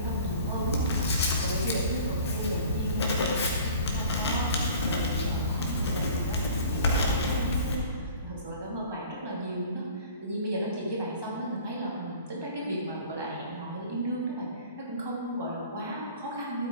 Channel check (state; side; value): inverted; both; correlation -0.46